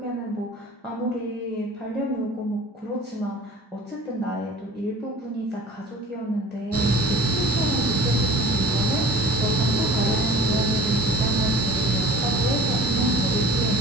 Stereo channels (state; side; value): normal; both; correlation 0.44